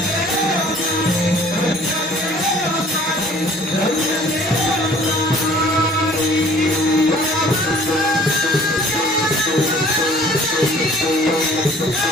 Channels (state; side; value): normal; both; correlation 0.53